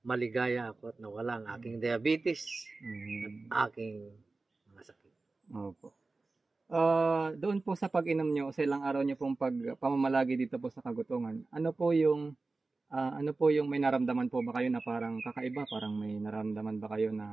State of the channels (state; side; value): quieter; left; 3.6 dB